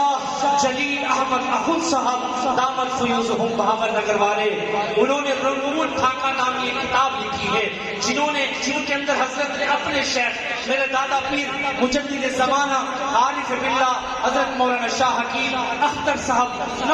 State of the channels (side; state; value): both; identical; correlation 1.00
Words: جلیل احمد اخند صاحب دامت فیوزہم بہاول نگر والے، انہوں نے رموز ٹھاکہ نامی ایک کتاب لکھی ہے، جن کے اندر حضرت نے اپنے شیخ میرے دادا پیر مجدد زمانہ عارف باللہ حضرت مولانا شاہ حکیم اختر صاحب